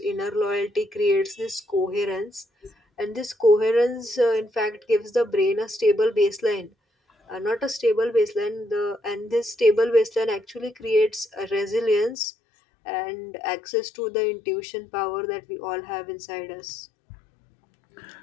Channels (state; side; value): drops out; right; at 12.2 s